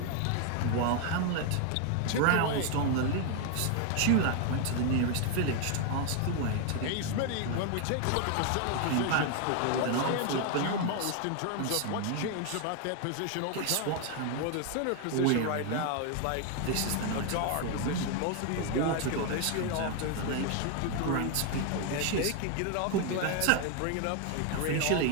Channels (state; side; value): different; both; correlation 0.00